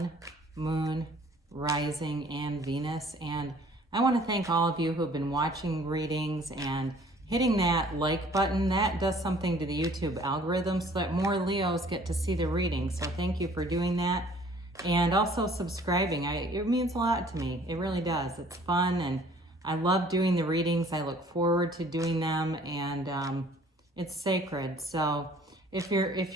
Moon, Rising, and Venus. And I want to thank all of you who have been watching readings and hitting that like button. That does something to the YouTube algorithm so that more Leos get to see the reading. So thank you for doing that. And also subscribing. It means a lot to me. It really does. It's fun and I love doing the readings. I look forward to doing them, and it's sacred. So if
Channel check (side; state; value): both; normal; correlation 0.55